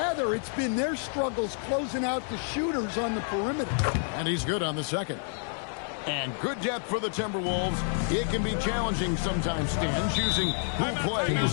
it's been their struggles closing out the shooters on the perimeter. And he's good on the second. And good depth for the Timberwolves. It can be challenging sometimes, Stan, choosing who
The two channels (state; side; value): silent; right; 59 dB below the other